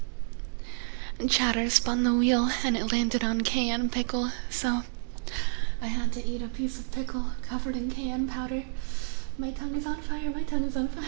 Chatter spun the wheel and it landed on cayenne pickle, so I had to eat a piece of pickle covered in cayenne powder. My tongue is on fire, my tongue is on fire.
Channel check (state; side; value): silent; left; digital silence